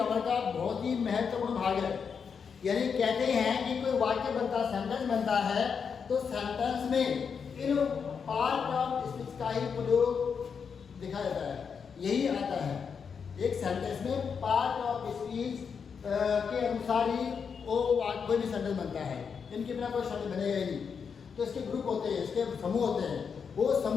का बहुत ही महत्वपूर्ण भाग है। यानी कहते हैं कि कोई वाक्य बनता, सेंटेंस बनता है तो सेंटेंस में इन पार्ट ऑफ स्पीच का ही प्रयोग देखा जाता है, यही आता है। एक सेंटेंस में पार्ट ऑफ स्पीच के अनुसार ही वो कोई भी सेंटेंस बनता है, इनके बिना कोई सेंटेंस बनेगा ही नहीं। तो इसके ग्रुप होते हैं, इसके समूह होते हैं। वो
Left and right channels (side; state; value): right; quieter; 6.3 dB